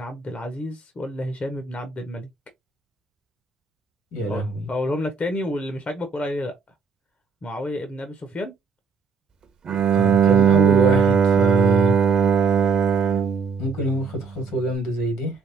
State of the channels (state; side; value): quieter; left; 5.0 dB